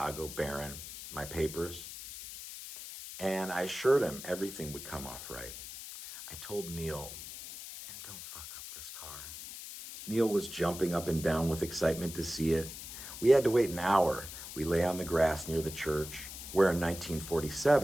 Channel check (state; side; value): noise; left; hiss, 11 dB below the sound